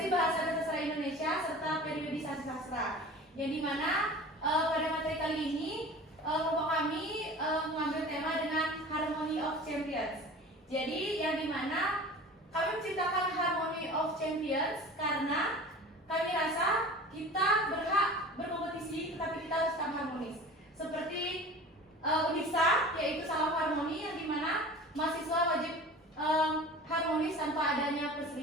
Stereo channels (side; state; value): both; normal; correlation 0.39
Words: bahasa dan sastra Indonesia serta periodisasi sastra. Yang dimana pada materi kali ini kelompok kami mengambil tema dengan Harmony of Champions. Jadi yang dimana kami menciptakan Harmony of Champions karena kami rasa kita berhak berkompetisi tetapi kita harus tetap harmonis. Seperti UNISA yaitu salam harmoni yang dimana mahasiswa wajib harmonis tanpa adanya